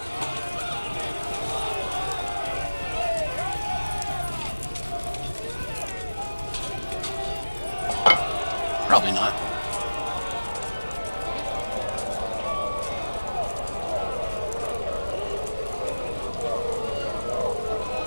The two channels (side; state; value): both; inverted; correlation -1.00